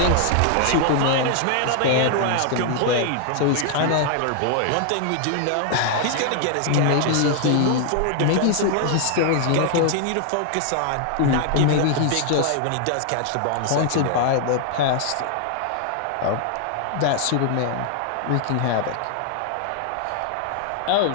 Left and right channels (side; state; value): both; different; correlation 0.00